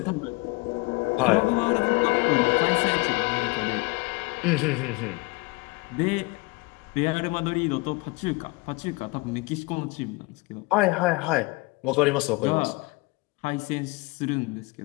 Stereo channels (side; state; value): right; quieter; 26.0 dB